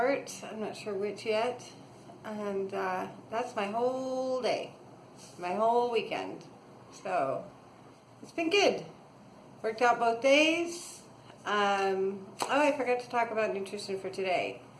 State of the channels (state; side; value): identical; both; correlation 1.00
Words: I'm not sure which yet. And that's my whole day. My whole weekend. So, it's been good. Worked out both days. I forgot to talk about nutrition for today.